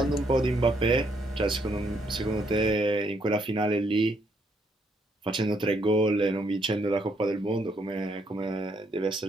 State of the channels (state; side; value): normal; both; correlation 0.73